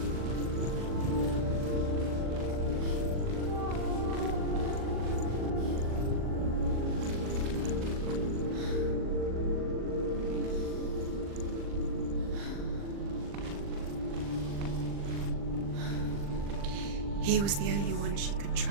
He was the only one she could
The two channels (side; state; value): left; late; 40 ms